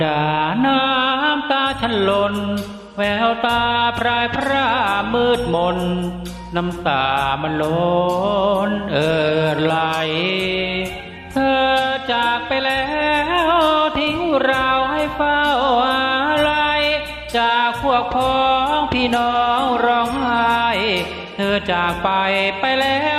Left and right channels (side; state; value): both; identical; correlation 1.00